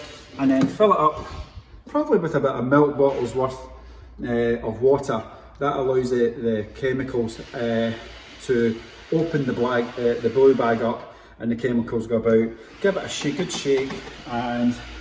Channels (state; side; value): identical; both; correlation 1.00